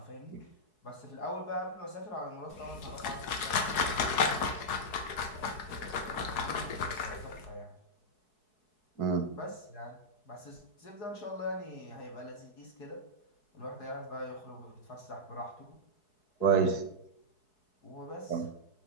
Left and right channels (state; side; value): late; right; 4.7 ms